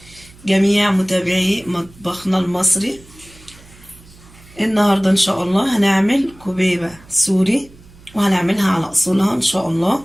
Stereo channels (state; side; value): noise; right; hum, 24 dB below the sound